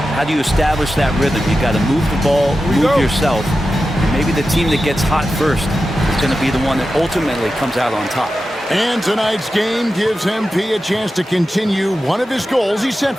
How do you establish that rhythm? You got to move the ball, move yourself. And maybe the team that gets hot first is going to be the one that ultimately comes out on top. And tonight's game gives MP a chance to continue one of his goals he set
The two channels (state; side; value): normal; both; correlation 0.92